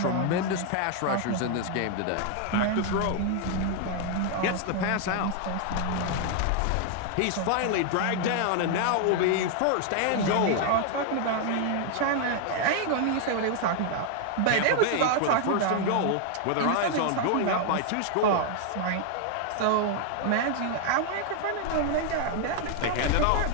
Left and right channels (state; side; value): different; both; correlation 0.00